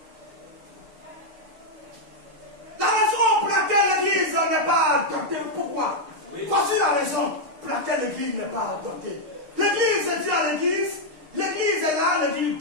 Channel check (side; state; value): left; late; 6.6 ms